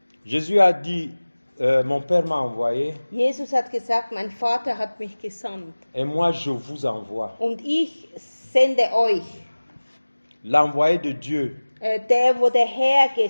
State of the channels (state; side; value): inverted; both; correlation -1.00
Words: Jésus a dit, mon Père m'a envoyé Jesus hat gesagt, mein Vater hat mich gesandt et moi je vous envoie. und ich sende euch. L'envoyé de Dieu, Der, wo der Herr